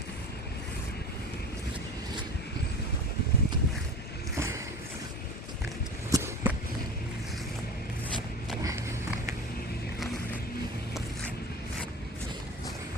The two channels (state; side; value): normal; both; correlation 0.33